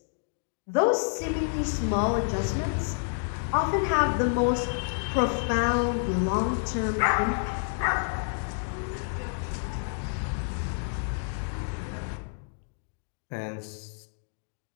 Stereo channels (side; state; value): right; silent; digital silence